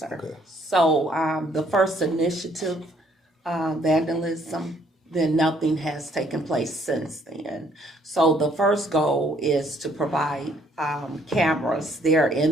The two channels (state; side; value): normal; both; correlation 0.65